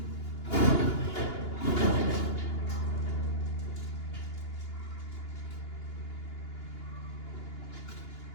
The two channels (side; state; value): right; late; 2.8 ms